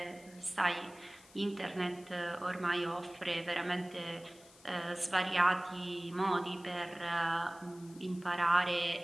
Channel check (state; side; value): noise; left; hiss, 24 dB below the sound